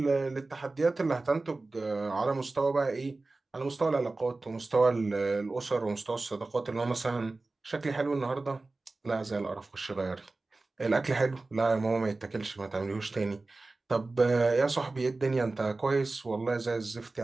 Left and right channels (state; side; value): quieter; left; 3.3 dB